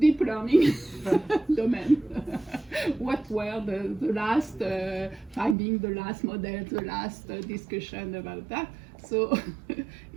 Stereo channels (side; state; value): left; drops out; at 5.6 s